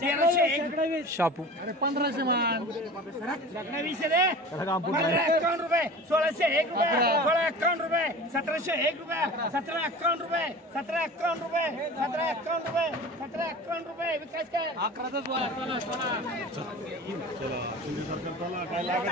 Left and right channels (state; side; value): normal; both; correlation 0.37